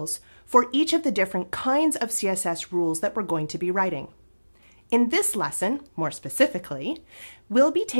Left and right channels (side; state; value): both; inverted; correlation -1.00